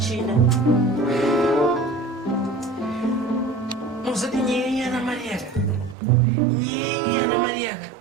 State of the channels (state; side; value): drops out; left; at 6.0 s